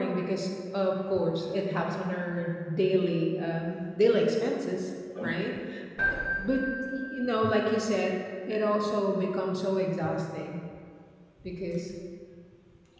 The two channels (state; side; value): identical; both; correlation 1.00